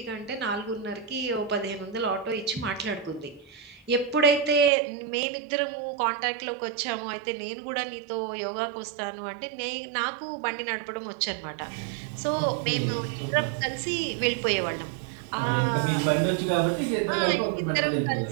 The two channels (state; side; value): drops out; left; at 4.7 s